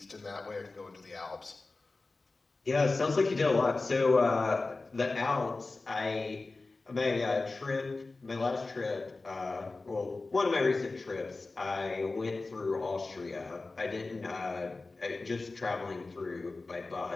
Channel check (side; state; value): right; quieter; 3.5 dB